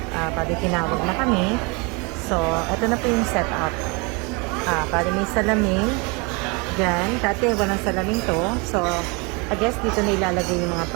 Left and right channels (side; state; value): left; quieter; 29.7 dB